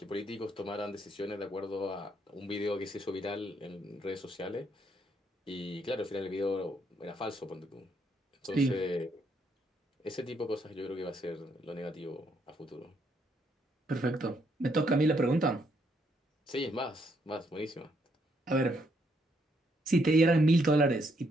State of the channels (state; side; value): normal; both; correlation 0.73